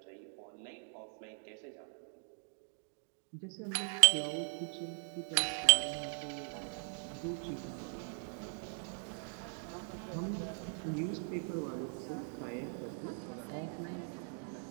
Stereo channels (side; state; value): left; silent; 51 dB below the other